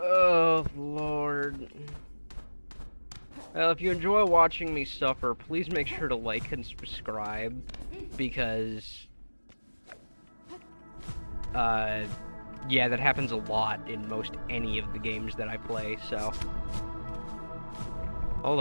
Lord. Well, if you enjoy watching me suffer, please make sure to like and subscribe, because, yeah, that happens a lot in most any of the games that I play, so. Hold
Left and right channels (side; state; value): both; inverted; correlation -1.00